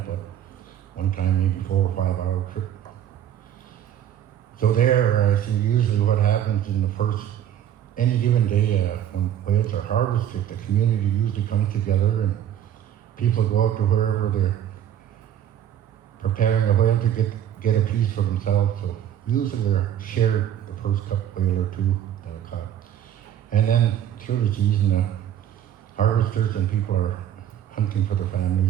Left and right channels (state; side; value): quieter; left; 10.5 dB